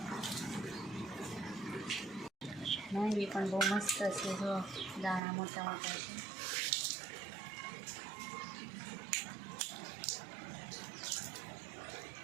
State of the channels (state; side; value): drops out; left; at 5.2 s